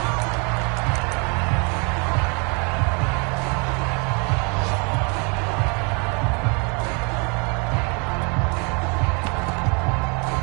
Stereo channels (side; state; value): left; quieter; 33.4 dB